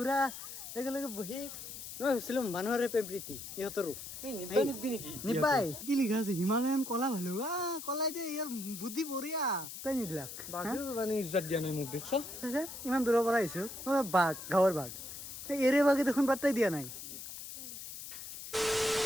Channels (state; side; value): noise; left; hiss, 10 dB below the sound